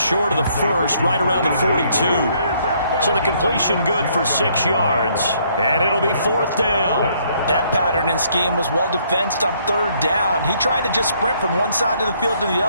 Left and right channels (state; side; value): inverted; both; correlation -0.67